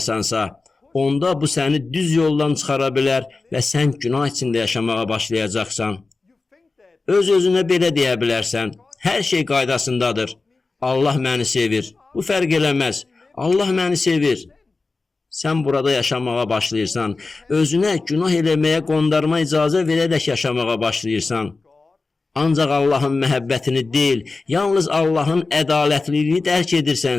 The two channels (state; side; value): quieter; right; 3.8 dB